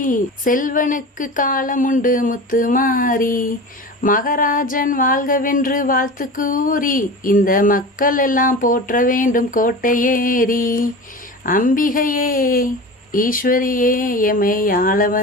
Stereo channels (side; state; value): both; normal; correlation 0.31